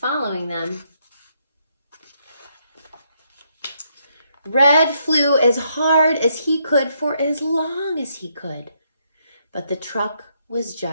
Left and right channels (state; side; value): inverted; both; correlation -0.75